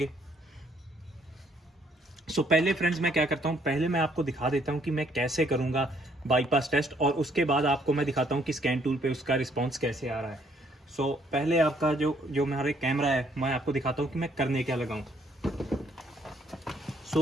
सो पहले फ्रेंड्स मैं क्या करता हूँ, पहले मैं आपको दिखा देता हूँ कि मैं कैसे करूँगा बाईपास टेस्ट, और उसके बाद आपको मैं दिखाता हूँ कि स्कैन टूल पे उसका रिस्पांस कैसे आ रहा है। सो पहले आपका जो हमारे कैमरा है, मैं आपको दिखाता हूँ कि मैं करने क्या लगाऊँ।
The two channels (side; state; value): both; normal; correlation 0.67